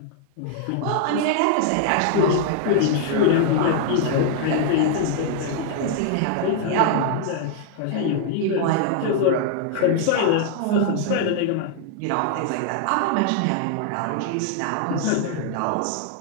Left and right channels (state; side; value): different; both; correlation 0.00